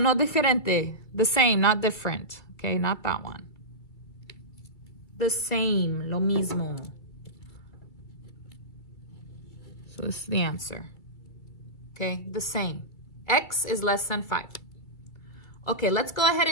no diferente. The same, not different. Okay, not that one. The same, lo mismo. So this is the answer. Okay, the same. X is less than 5. Okay, let's go ahead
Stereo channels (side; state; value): right; late; 2.3 ms